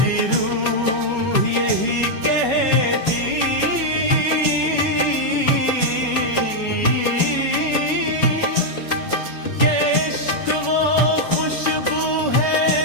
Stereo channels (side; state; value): right; late; 5.3 ms